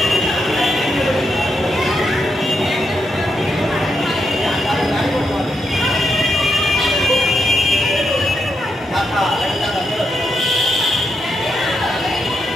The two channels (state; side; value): normal; both; correlation 0.83